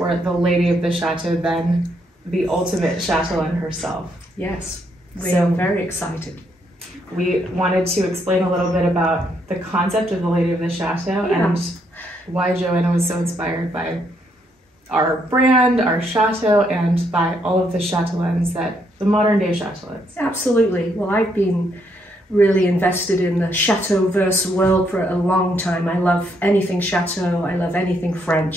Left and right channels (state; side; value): normal; both; correlation 0.74